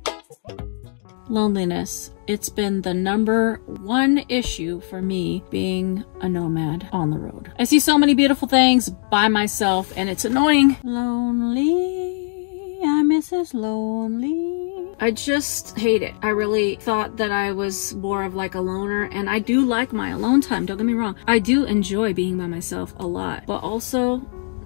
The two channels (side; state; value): right; silent; 59 dB below the other